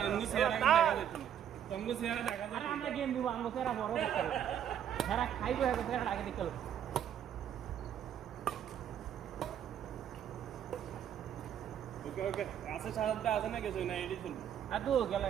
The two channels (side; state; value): left; quieter; 9.6 dB